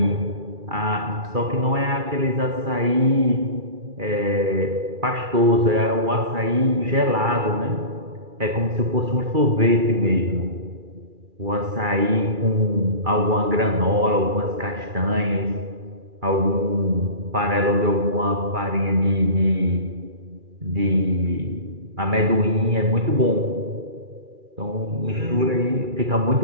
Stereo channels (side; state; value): left; late; 2.4 ms